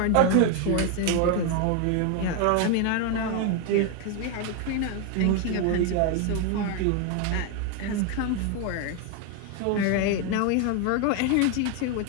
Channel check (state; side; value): different; both; correlation 0.01